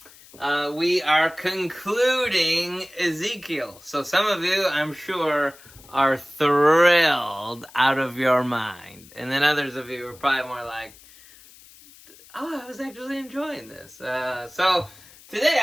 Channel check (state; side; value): noise; left; hiss, 23 dB below the sound